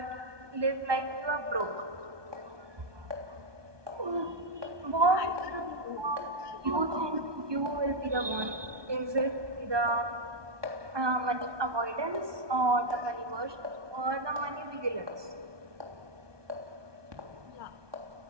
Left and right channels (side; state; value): left; late; 1.2 ms